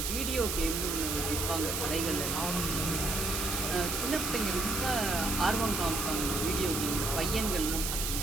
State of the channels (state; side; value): noise; right; hiss, 1 dB below the sound